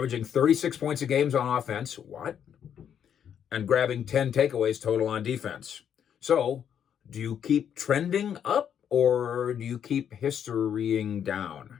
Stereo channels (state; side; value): quieter; right; 8.7 dB